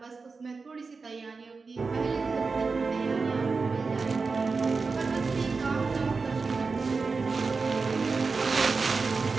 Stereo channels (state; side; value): quieter; left; 4.4 dB